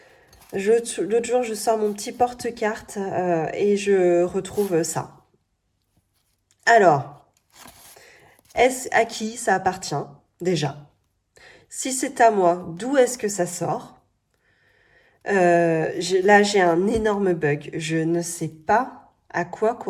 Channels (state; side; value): identical; both; correlation 1.00